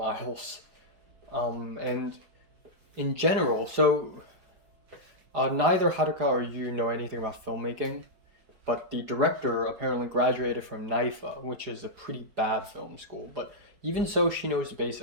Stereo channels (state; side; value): late; left; 4.9 ms